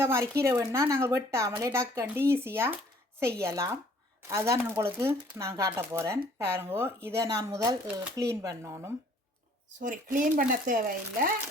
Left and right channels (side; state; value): both; normal; correlation 0.58